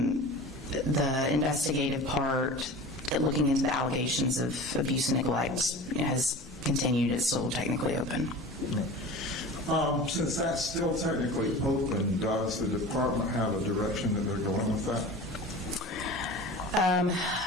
investigative part, looking into the allegations of abuse and neglect, has continued. It's still technically open. Since that's still technically open, does the department have a direction that they're going with that?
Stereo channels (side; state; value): both; normal; correlation 0.36